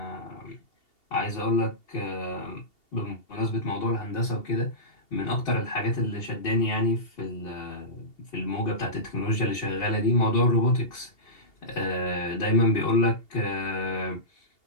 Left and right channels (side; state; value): right; late; 2.8 ms